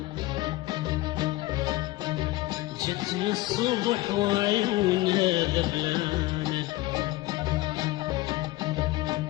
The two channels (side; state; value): right; quieter; 18.5 dB